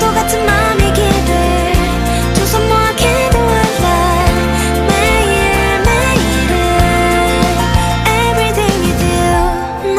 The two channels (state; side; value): identical; both; correlation 1.00